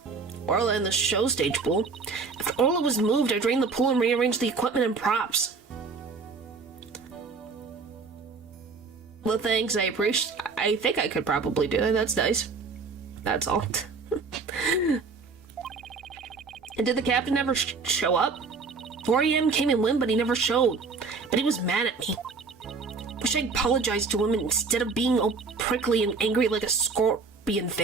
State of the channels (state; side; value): quieter; left; 4.6 dB